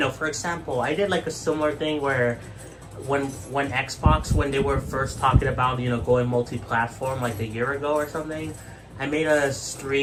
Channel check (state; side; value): identical; both; correlation 1.00